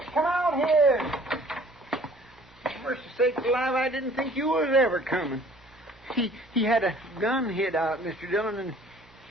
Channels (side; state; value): both; normal; correlation 0.53